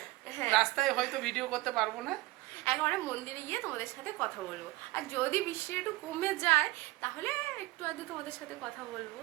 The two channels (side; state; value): left; quieter; 20.1 dB